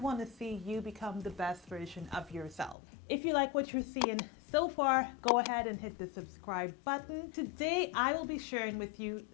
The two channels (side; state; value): right; drops out; at 2.8 s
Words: to see you become the best version of yourself. If you like what you're seeing so far, go ahead and hit the subscribe button. Today, I will be sharing with you